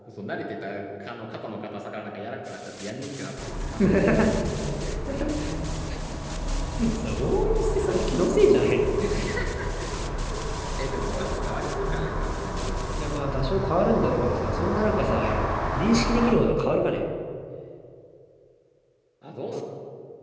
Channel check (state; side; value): identical; both; correlation 1.00